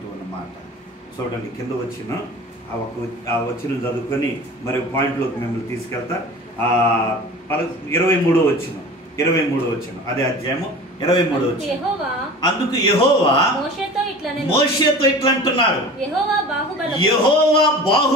ఉన్నమాట చూడండి. కింద వచ్చిన ఆ వచ్చిన చదువుకొని మరి పాయింట్లోకి మిమ్మల్ని తీసుకెళ్తా. 23వ వచ్చిన అదే అధ్యాయము 23 వచ్చి, అందుకు యెహోవా మోషేతో ఇట్లా అంటున్నాడు, యెహోవా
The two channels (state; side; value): normal; both; correlation 0.38